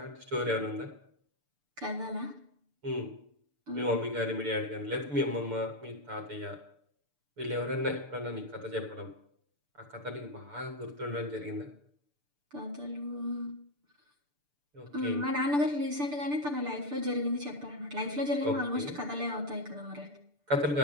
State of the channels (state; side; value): late; left; 6.8 ms